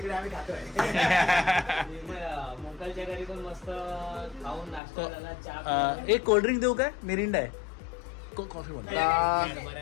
आम्ही खातोय. मोकलच्या घरी पण मस्त खाऊन नाश्ता झाला, चहा. एक कोल्ड्रिंक देऊ काय? मिरिंडा आहे. इतकं कॉफी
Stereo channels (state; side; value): drops out; right; at 4.8 s